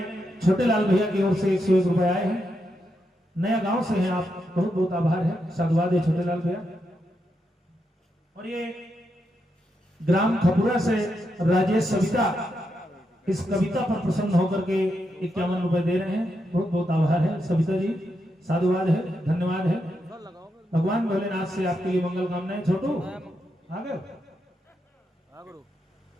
छोटे लाल भैया की ओर से 101 रुपए आए हैं। नया गांव से हैं आप, बहुत बहुत आभार है, साधुवाद है छोटे लाल भैया। और ये ग्राम खपुरा से राजेश सविता इस कविता पर प्रसन्न होकर के 51 रुपए दे रहे हैं, बहुत बहुत आभार है सविता जी, साधुवाद है, धन्यवाद है। भगवान भोलेनाथ से आपके लिए मंगल कामनाएं। छोटू आ गए,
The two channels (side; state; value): both; normal; correlation 0.83